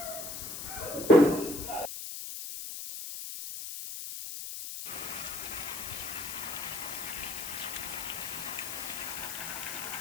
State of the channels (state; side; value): noise; left; hiss, 6 dB below the sound